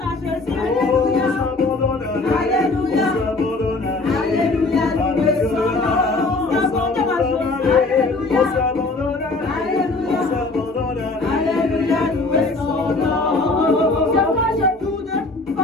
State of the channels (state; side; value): quieter; right; 3.4 dB